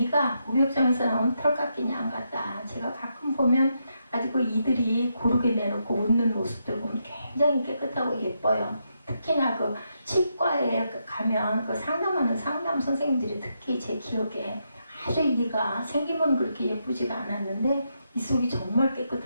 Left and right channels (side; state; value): both; inverted; correlation -0.82